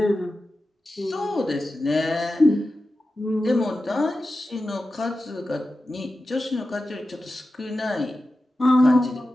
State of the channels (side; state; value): both; normal; correlation 0.93